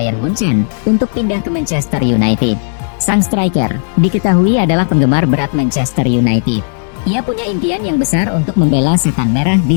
Munchen untuk pindah ke Manchester United. Sang striker diketahui adalah penggemar berat Manchester United. Ia punya impian yang besar untuk membela setan merah di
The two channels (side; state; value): right; silent; digital silence